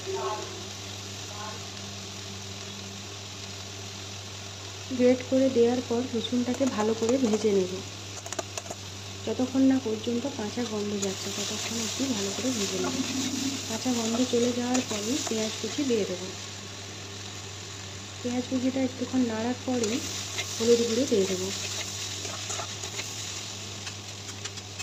গ্রেট করে দেওয়ার পর রসুনটাকে ভালো করে ভেজে নেব। যতক্ষণ না পর্যন্ত কাঁচা গন্ধ যাচ্ছে ততক্ষণ একটু ভালো করে ভেজে নেব। কাঁচা গন্ধ চলে যাওয়ার পরেই পেঁয়াজ কুচি দিয়ে দেব। পেঁয়াজ কুচিটা একটুক্ষণ নাড়ার পরেই হলুদ গুঁড়ো দিয়ে দেবো।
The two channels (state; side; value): identical; both; correlation 1.00